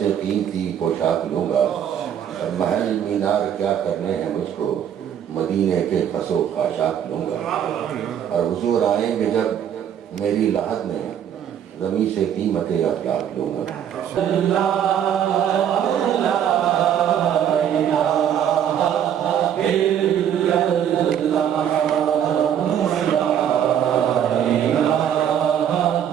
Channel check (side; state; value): left; quieter; 9.4 dB